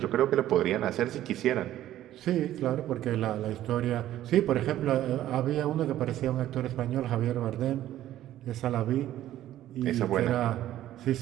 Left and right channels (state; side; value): quieter; left; 13.1 dB